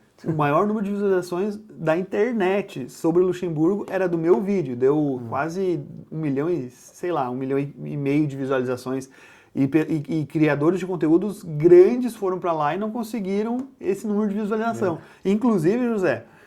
O maior número de visualizações da internet sobre Luxemburgo era do meu vídeo. Deu quase 1 milhão e, sei lá, 1,5 milhão de visualizações. E criadores de conteúdos grandes foram para lá e não conseguiram esse número de visualização. Inclusive, José,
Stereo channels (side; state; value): both; identical; correlation 1.00